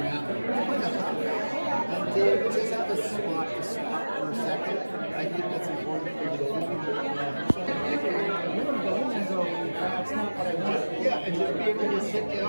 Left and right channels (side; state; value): both; inverted; correlation -1.00